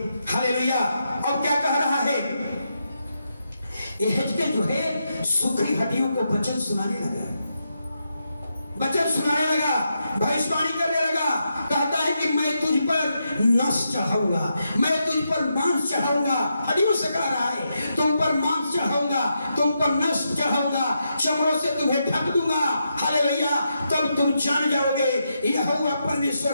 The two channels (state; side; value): inverted; both; correlation -0.84